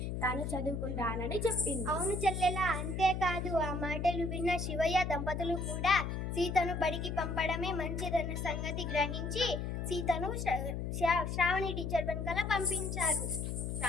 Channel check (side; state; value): left; noise; hum, 3 dB below the sound